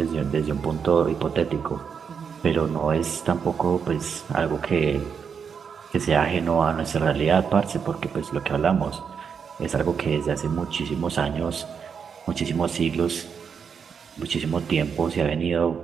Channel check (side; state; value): left; quieter; 6.6 dB